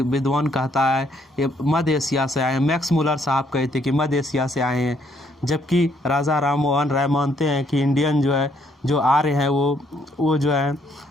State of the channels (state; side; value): normal; both; correlation 0.69